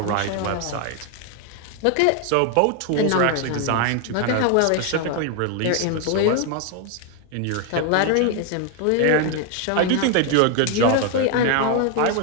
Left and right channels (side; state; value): both; different; correlation 0.01